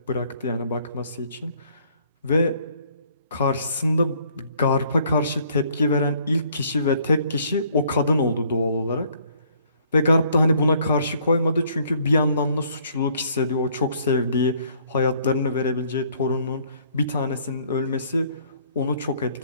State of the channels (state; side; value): inverted; both; correlation -0.62